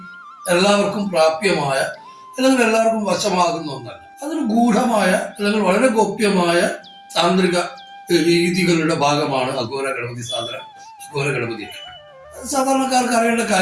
എല്ലാവർക്കും പ്രാപ്യമായ അല്ലെങ്കിൽ എല്ലാവർക്കും വശമാകുന്ന ഒന്നല്ല. അതൊരു ഗൂഢമായ അല്ലെങ്കിൽ വളരെ ഗോപ്യമായ താന്ത്രിക രീതികളുടെ ഭാഗമാണ് അഘോര ഗണപതി സാധന. അഘോര ഗണപതി സാധാരണക്കാർക്ക് അറിയേണ്ട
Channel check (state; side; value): identical; both; correlation 1.00